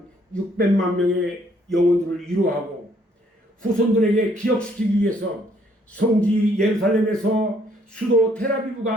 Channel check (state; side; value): normal; both; correlation 0.66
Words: 600만 명의 영혼들을 위로하고 후손들에게 기억시키기 위해서 성지 예루살렘에서 수도 텔아비브